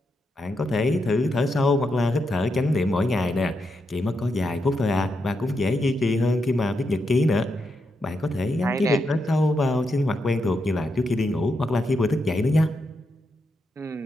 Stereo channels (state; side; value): normal; both; correlation 0.83